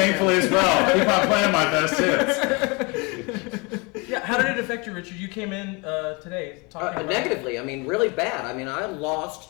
as well. Keep on playing my best hits. Yeah, how did it affect you, Richard? You came in today talking about Negatively. I mean, really bad. I mean, I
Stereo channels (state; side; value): quieter; right; 28.9 dB